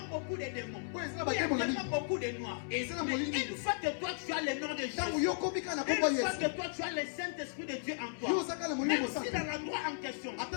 beaucoup de démons, Ouais, c'est là où il y a bakemo na tellement beaucoup de noirs. Et c'est là Mais molini. une fois que toi tu as le nom de Tango Jésus, yokomika na une komba fois Yesu. que toi tu as le Saint-Esprit de Dieu en Yo toi, saka na molimo même si mosaka. dans l'endroit en question,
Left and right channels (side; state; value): right; silent; 54 dB below the other